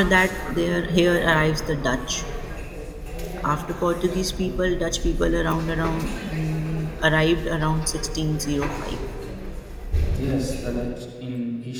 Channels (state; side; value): identical; both; correlation 1.00